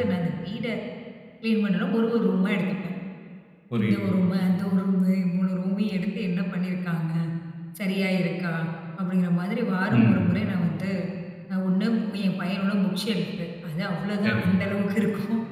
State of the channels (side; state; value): both; identical; correlation 1.00